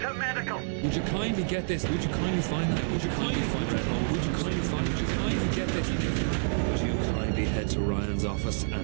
to medical! Would you kindly get this? Would you kindly find that? Would you kindly find that? Would you kindly find it? Would you kindly get this? Would you kindly head to Ryan's office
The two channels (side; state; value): left; silent; 59 dB below the other